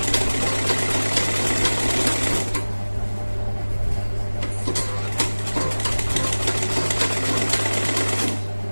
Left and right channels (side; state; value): both; inverted; correlation -1.00